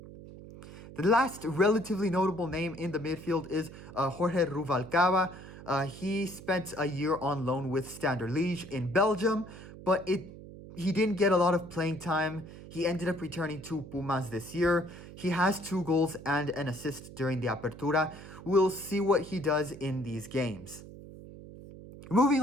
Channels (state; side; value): noise; right; hum, 15 dB below the sound